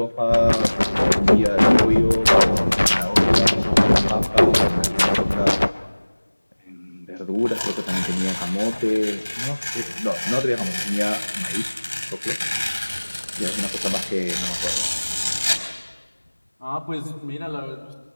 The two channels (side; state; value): both; inverted; correlation -1.00